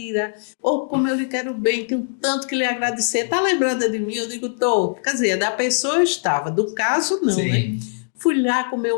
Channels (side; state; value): right; silent; digital silence